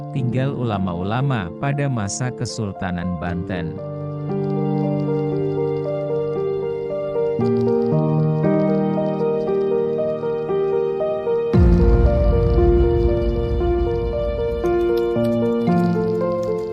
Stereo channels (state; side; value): identical; both; correlation 1.00